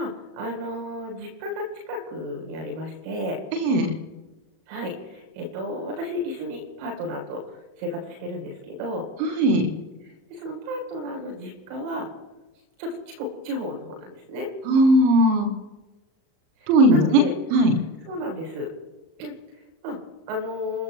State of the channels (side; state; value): left; late; 37 ms